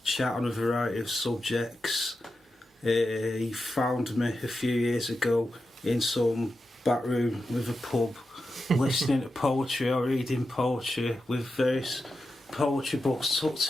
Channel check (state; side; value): normal; both; correlation 0.90